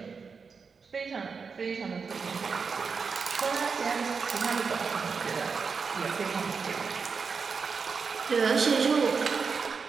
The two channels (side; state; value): left; quieter; 5.3 dB